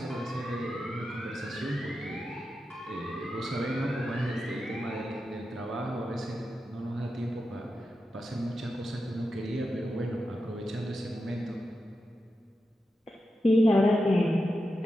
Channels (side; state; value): both; normal; correlation 0.89